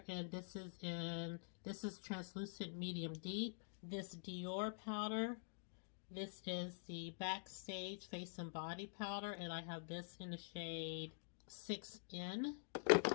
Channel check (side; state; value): right; silent; digital silence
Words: and this is translucent medium deep. This Dior powder, this is the Backstage face and body powder, and I have this in the shade 6N.